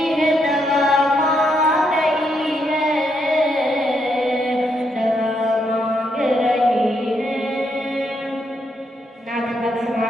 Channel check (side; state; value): both; normal; correlation 0.78